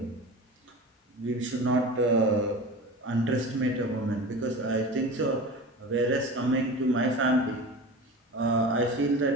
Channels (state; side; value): normal; both; correlation 0.33